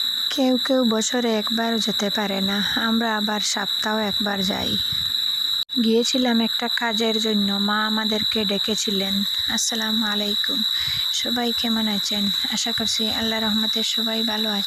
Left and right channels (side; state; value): both; identical; correlation 1.00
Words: কেউ কেউ বছরে একবার যেতে পারে না, আমরা আবার সপ্তাহে একবার যাই। গিয়েছিলাম একটা কাজের জন্য, মা আমাদেরকে ডেকেছিলেন। আসসালামু আলাইকুম, সবাই কেমন আছেন? আশা করছি আল্লাহ রহমতে সবাই ভালো